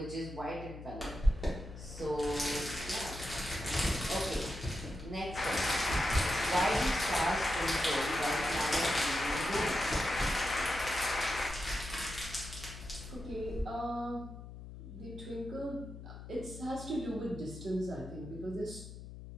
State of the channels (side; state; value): left; noise; hum, 12 dB below the sound